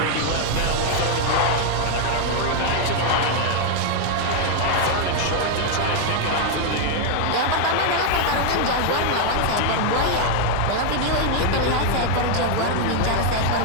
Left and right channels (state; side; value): different; both; correlation 0.00